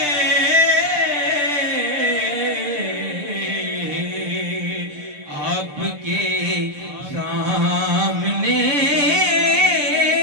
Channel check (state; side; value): late; left; 6.8 ms